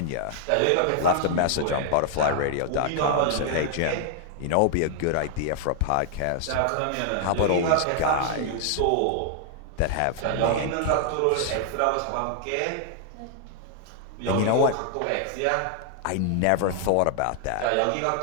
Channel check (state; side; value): different; both; correlation 0.00